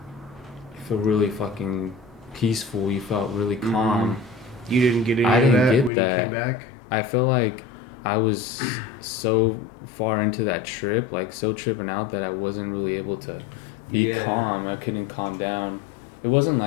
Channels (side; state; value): right; drops out; at 5.9 s